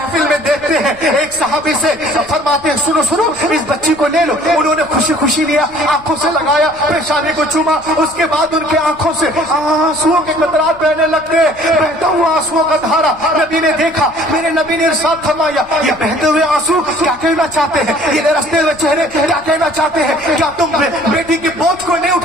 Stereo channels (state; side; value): noise; left; rumble, 24 dB below the sound